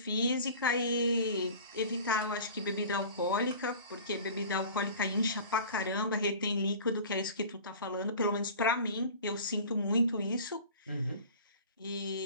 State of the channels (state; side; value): inverted; both; correlation -0.41